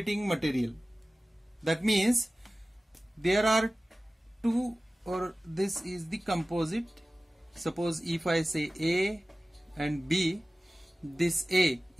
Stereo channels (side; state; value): both; normal; correlation 0.96